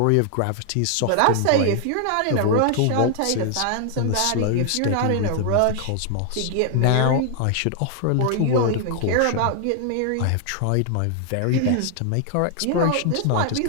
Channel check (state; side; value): different; both; correlation 0.00